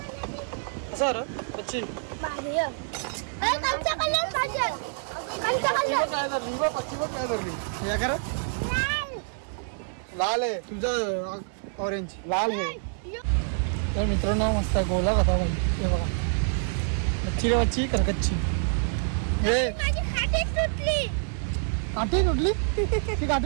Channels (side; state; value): left; silent; 60 dB below the other